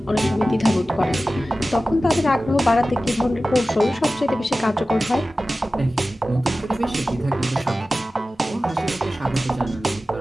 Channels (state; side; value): normal; both; correlation 0.95